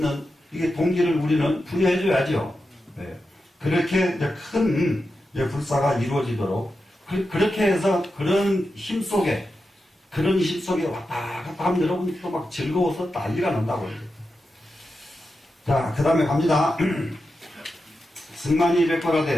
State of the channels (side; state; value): both; normal; correlation 0.89